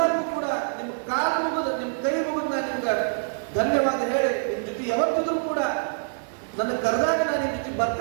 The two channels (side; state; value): left; silent; digital silence